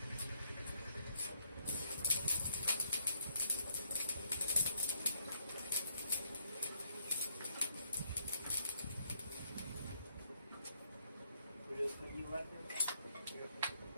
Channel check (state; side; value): inverted; both; correlation -0.73